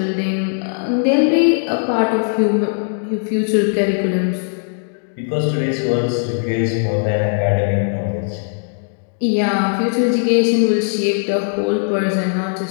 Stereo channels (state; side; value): silent; right; digital silence